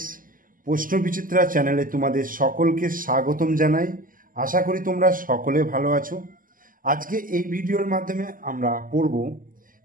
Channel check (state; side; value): late; left; 0.40 ms